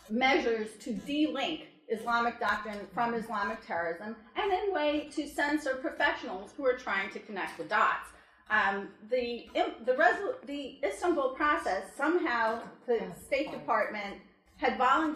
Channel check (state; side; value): identical; both; correlation 1.00